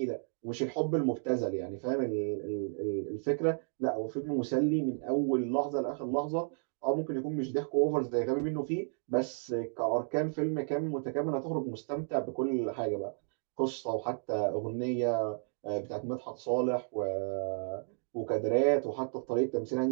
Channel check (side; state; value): left; silent; digital silence